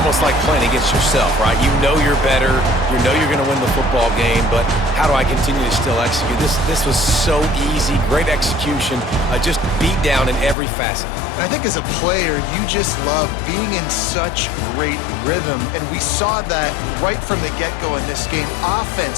like playing against yourself, right? You know you're better. You know you're going to win the football game, but how do I continue to still execute? This was so easy. Great execution. Just beat down in every facet. And I think as a player, you just love being in such great rhythm. And we saw that right from the get-go in this game.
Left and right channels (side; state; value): right; drops out; at 10.6 s